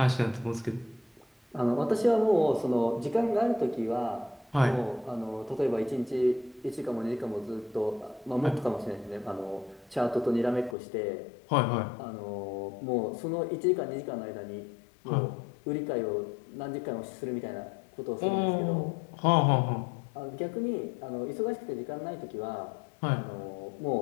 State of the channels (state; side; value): drops out; right; at 10.8 s